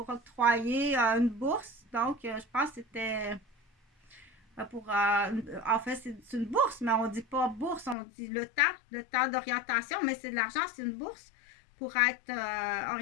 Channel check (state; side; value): drops out; right; at 8.0 s